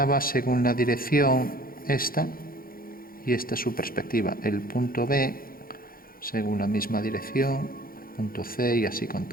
según la dirección esta, y esta es su perspectiva. El punto B según la misma dirección, el punto C, y así con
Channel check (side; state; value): right; late; 0.42 ms